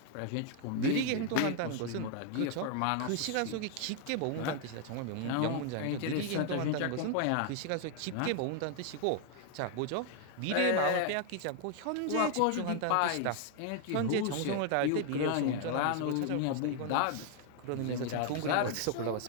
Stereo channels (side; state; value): both; different; correlation 0.00